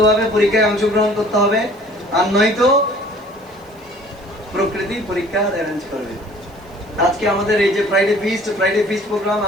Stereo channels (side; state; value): right; noise; hiss, 30 dB below the sound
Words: ভাবে পরীক্ষায় অংশগ্রহণ করতে হবে, আর নয়তো প্রকৃতি পরীক্ষা অ্যারেঞ্জ করবে। আজকে আমাদের এই যে ফ্রাইডে ফিস্ট প্রোগ্রাম,